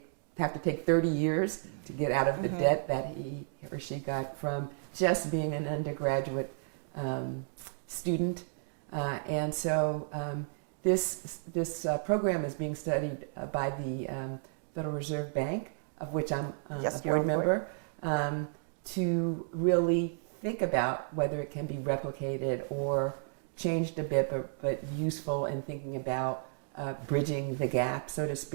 have to take 30 years to get out of the debt that he or she got from just being an undergraduate student. And so this program is being studied by the Federal Reserve Bank, of which I'm a board member, to really think about whether it can be replicated or changed a bit, but useful in thinking about bridging the gap, so to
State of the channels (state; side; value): silent; left; digital silence